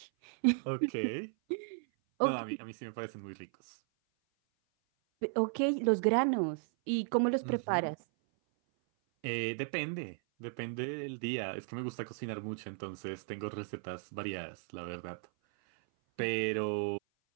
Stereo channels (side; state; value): left; silent; 54 dB below the other